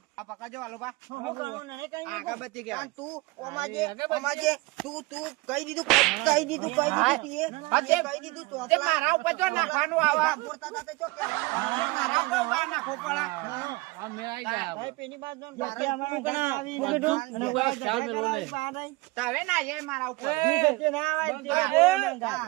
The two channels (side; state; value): left; quieter; 23.4 dB